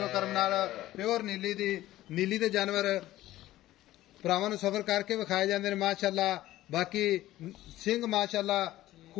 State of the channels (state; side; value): quieter; right; 15.2 dB